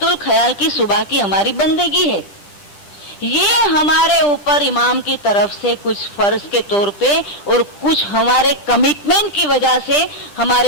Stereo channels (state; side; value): late; right; 10 ms